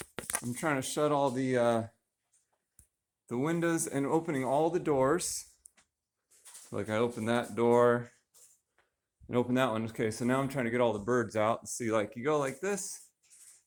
windows and opening all the doors. Like I opened that door and opened that one. Okay, so now I'm trying to get all the birds out and see, like, you go like this,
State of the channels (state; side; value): identical; both; correlation 1.00